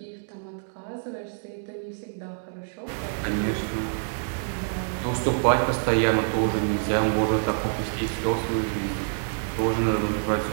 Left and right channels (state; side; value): silent; left; digital silence